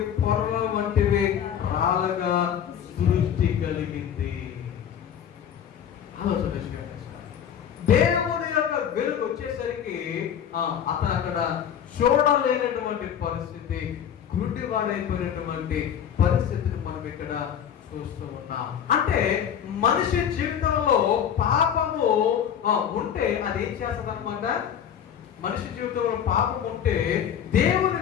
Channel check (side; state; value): right; quieter; 8.9 dB